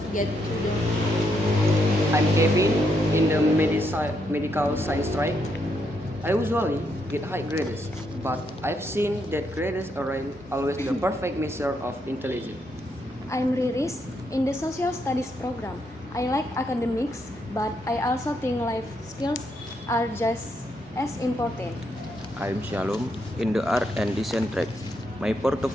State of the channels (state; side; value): normal; both; correlation 0.78